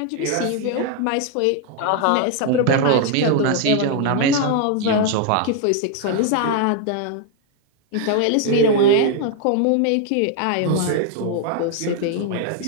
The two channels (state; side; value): different; both; correlation 0.00